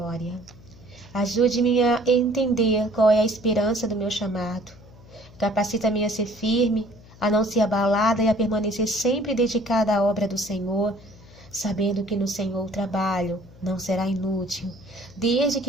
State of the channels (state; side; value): noise; left; hum, 22 dB below the sound